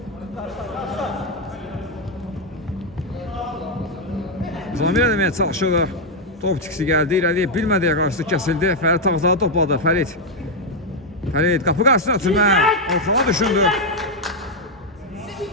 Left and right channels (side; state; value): both; normal; correlation 0.01